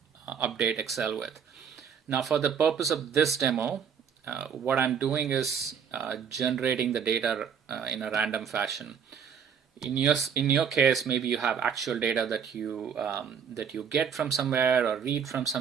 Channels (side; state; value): left; quieter; 7.3 dB